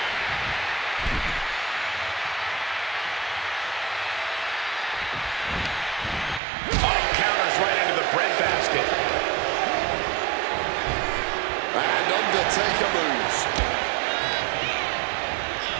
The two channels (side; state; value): left; drops out; at 6.4 s